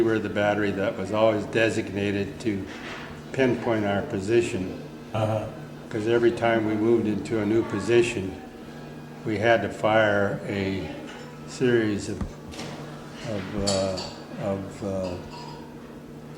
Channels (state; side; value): identical; both; correlation 1.00